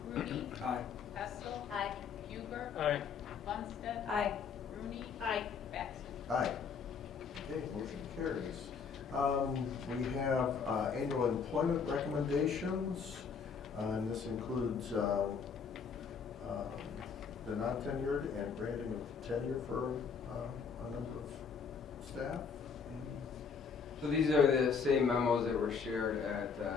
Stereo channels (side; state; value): right; quieter; 6.0 dB